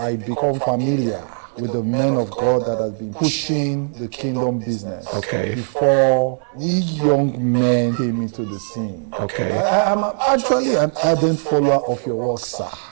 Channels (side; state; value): left; silent; 65 dB below the other